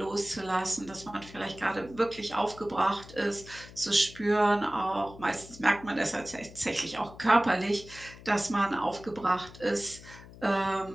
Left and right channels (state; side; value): noise; left; hum, 18 dB below the sound